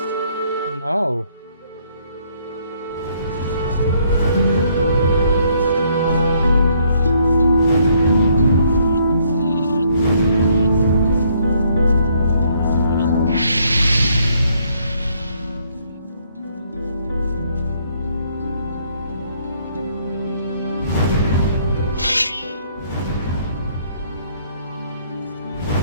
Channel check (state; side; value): inverted; both; correlation -0.67